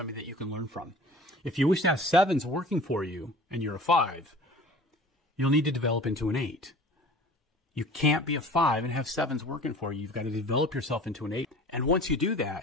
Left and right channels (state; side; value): normal; both; correlation 0.43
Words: that you can learn from. If you wish to have 7s working for you and you're a 5, you'll need to develop into an 8. You can't be a 5 and have 7s working for you. You've got to develop yourself into an 8. And once you do